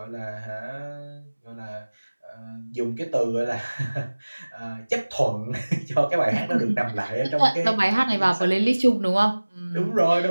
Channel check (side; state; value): both; inverted; correlation -1.00